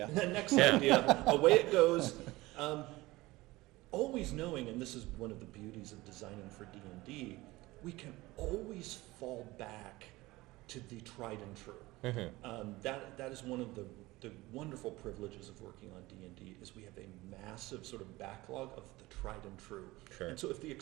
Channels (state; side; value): quieter; left; 19.8 dB